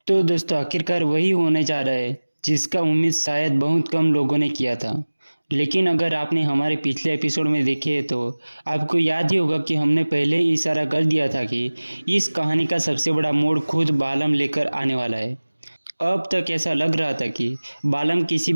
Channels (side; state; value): both; inverted; correlation -1.00